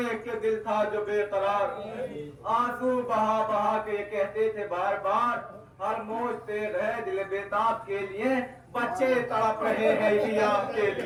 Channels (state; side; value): identical; both; correlation 1.00